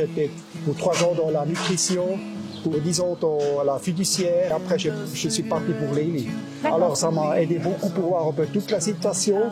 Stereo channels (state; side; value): identical; both; correlation 1.00